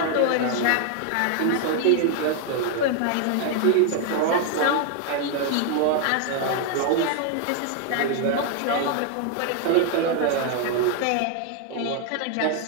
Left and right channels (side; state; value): both; different; correlation 0.00